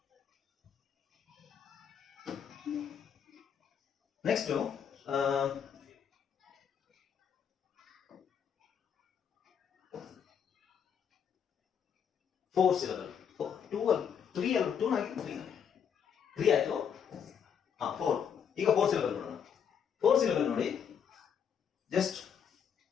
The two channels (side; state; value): right; quieter; 7.8 dB